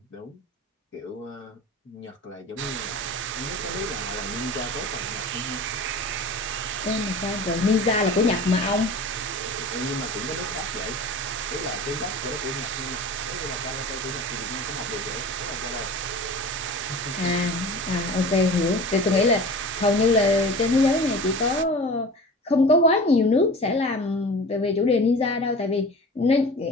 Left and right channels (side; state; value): both; normal; correlation 0.37